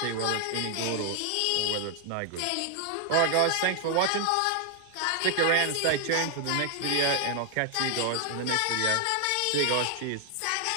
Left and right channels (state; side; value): different; both; correlation 0.00